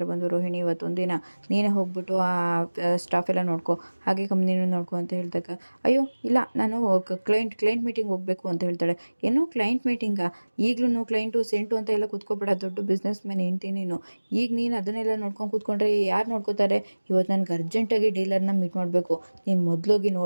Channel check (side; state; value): both; inverted; correlation -1.00